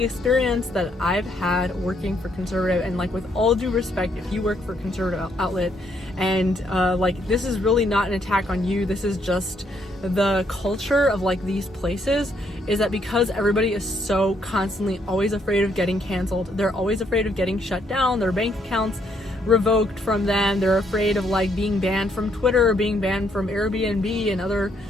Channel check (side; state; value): both; normal; correlation 0.72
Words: experience that I've had working for conservative, and like with all due respect, if you work for a conservative outlet, and like this is really not an attack on you, this is just the culture of like these places, is that because everybody is so constantly always afraid of getting canceled, they're always afraid of getting shut down, their bank accounts revoked from them, they're afraid of like being banned from Twitter or being banned from Airbnb and other